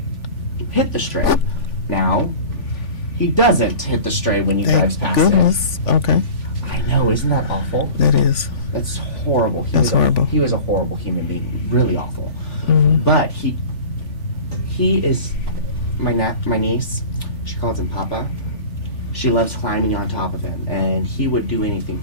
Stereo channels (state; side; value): late; right; 3.5 ms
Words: hit the stray. Now, he doesn't hit the stray when he drives Thank past goodness. Okay, it. I know, isn't that awful? that is. That's horrible. That's horrible. He was a horrible human being, really awful. Mhm. But he is my niece. She calls him Papa. She loves climbing on top of him, and he would do anything